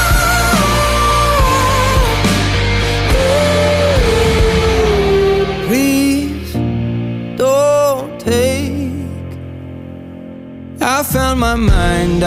Please don't take. I found my mind,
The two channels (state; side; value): identical; both; correlation 1.00